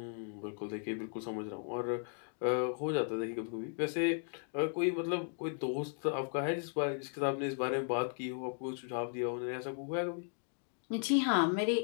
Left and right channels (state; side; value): silent; right; 54 dB below the other